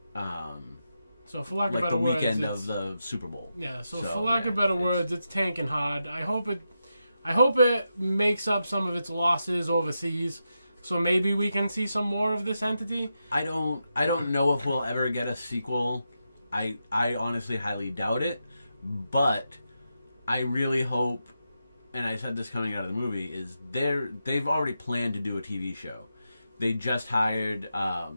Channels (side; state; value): both; inverted; correlation -0.87